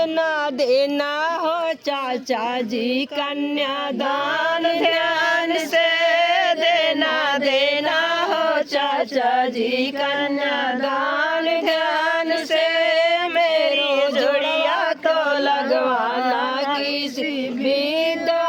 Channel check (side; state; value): both; identical; correlation 1.00